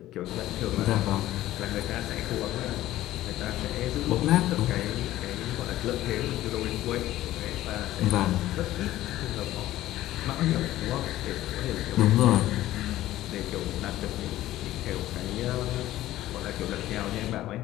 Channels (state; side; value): quieter; right; 14.8 dB